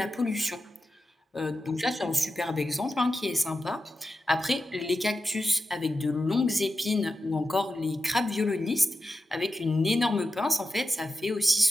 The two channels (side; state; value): both; normal; correlation 0.90